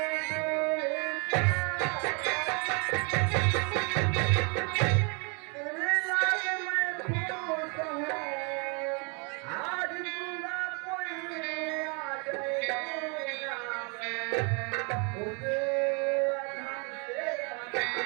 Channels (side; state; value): left; quieter; 34.2 dB